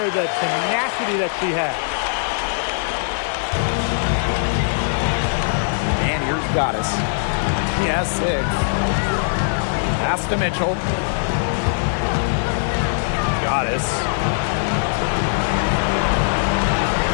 the tenacity that she has. And here's Goddess. She has 6. Pass to Mitchell. Goddess.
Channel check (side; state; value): right; silent; digital silence